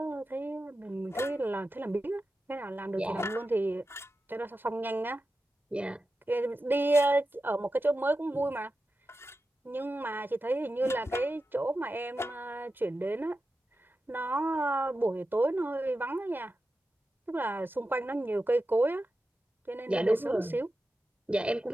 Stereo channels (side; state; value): both; normal; correlation 0.92